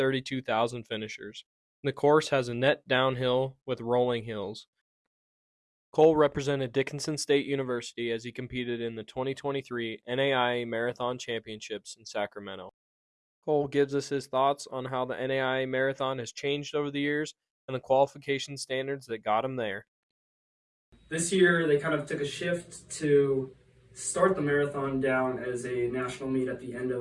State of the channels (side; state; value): both; identical; correlation 1.00